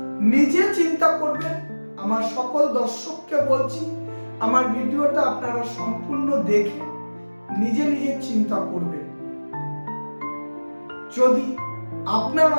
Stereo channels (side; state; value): both; inverted; correlation -1.00